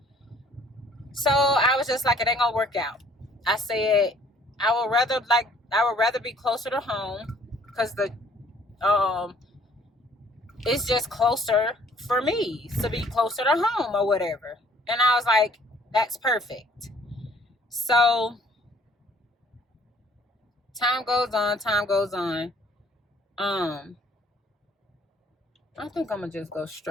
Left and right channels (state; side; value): normal; both; correlation 0.59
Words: So I was just like, it ain't gonna work out. I said, I would rather be closer to home, because it's just closer for me to be closer to home or whatever. And I was like, that's perfect. So time goes on. I think I'm gonna just go